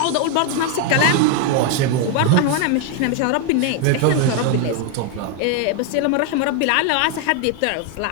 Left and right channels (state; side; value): different; both; correlation 0.01